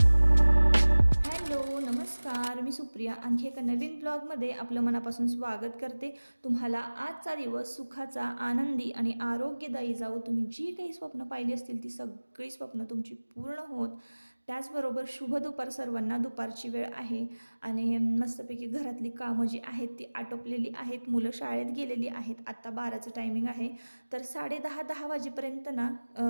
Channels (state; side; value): inverted; both; correlation -1.00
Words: नमस्कार, मी सुप्रिया. आणखी एका नवीन ब्लॉगमध्ये आपलं मनापासून स्वागत करते. तुम्हाला आजचा दिवस सुखाचा, आनंदी आणि आरोग्यदायी जावो. तुम्ही जी काही स्वप्न पाहिली असतील ती सगळी स्वप्न तुमची पूर्ण होत. त्याचबरोबर शुभ दुपार सर्वांना. दुपारची वेळ आहे आणि मस्तपैकी घरातली कामं जी आहेत ती आटोपलेली आहेत. मुलं शाळेत गेलेली आहेत. आत्ता 12चं टायमिंग आहे. तर 10:30 वाजेपर्यंत ना